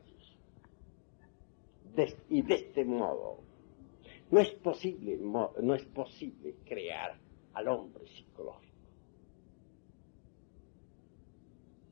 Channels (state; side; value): silent; right; digital silence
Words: y de este modo, no es posible crear al hombre psicológico.